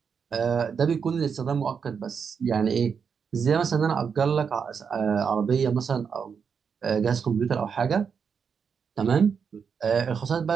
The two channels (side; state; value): left; quieter; 6.4 dB